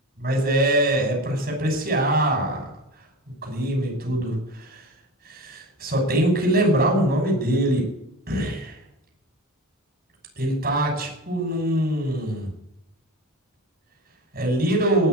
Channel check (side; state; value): both; normal; correlation 0.31